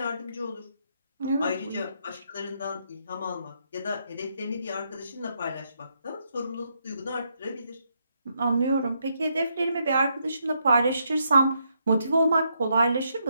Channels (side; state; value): both; inverted; correlation -0.77